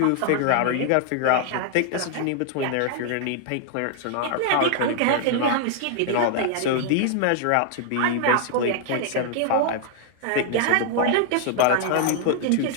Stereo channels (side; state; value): both; different; correlation 0.00